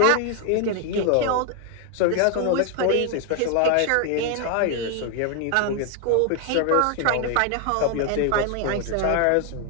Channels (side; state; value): both; different; correlation 0.01